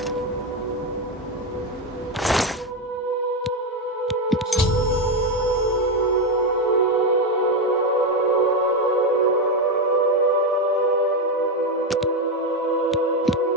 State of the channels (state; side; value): normal; both; correlation 0.09